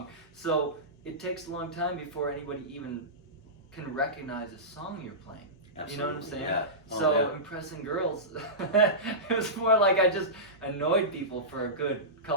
So it takes a long time before anybody even can recognize a song you're playing. Absolutely. You know what I'm saying? Yeah. So yeah. impressing girls, it was more like I just annoyed people for a good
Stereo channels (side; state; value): both; normal; correlation -0.17